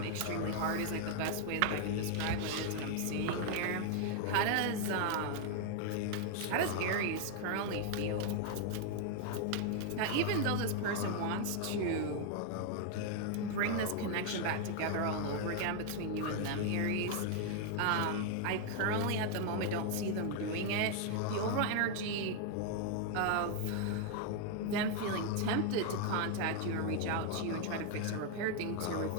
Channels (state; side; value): different; both; correlation 0.00